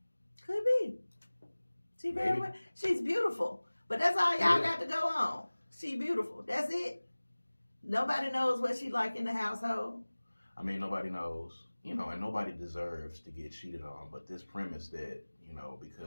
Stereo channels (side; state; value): both; inverted; correlation -1.00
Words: Could be. She's beautiful, but that's all y'all got to go on. She beautiful. That's it. Nobody knows what she like in the household. I mean, nobody knows, and nobody deserves to get cheated on. But this premise that,